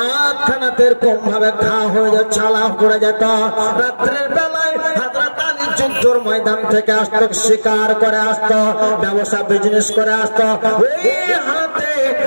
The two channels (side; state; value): both; inverted; correlation -1.00